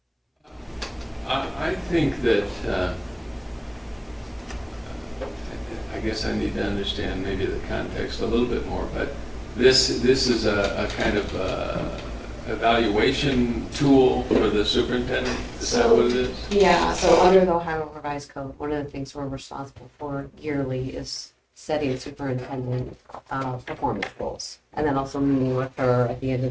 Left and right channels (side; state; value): both; identical; correlation 1.00